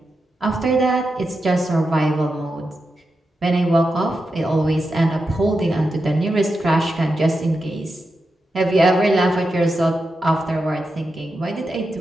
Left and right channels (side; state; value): both; normal; correlation 0.88